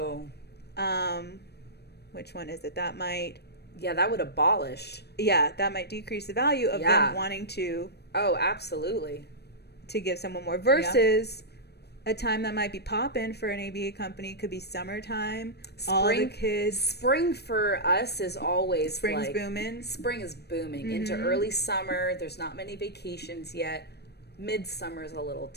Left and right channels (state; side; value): late; right; 0.48 ms